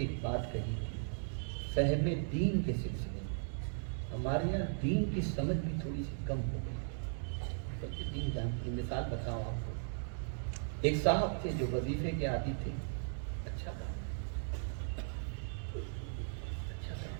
بات کہی تھی, فہم دین کے سلسلے میں ہمارے یہاں دین کی سمجھ بھی تھوڑی سی کم ہو گئی. بلکہ دین جانتی. مثال بتاؤں آپ کو, ایک صاحب تھے جو وظیفے کے عادی تھے. اچھا کام, اچھا کام.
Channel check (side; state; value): left; silent; digital silence